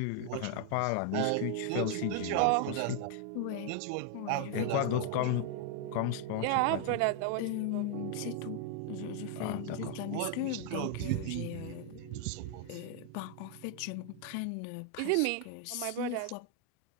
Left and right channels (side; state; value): both; different; correlation 0.00